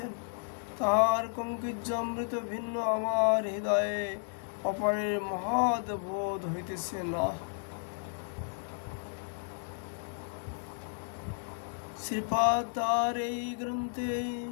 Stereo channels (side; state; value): right; silent; digital silence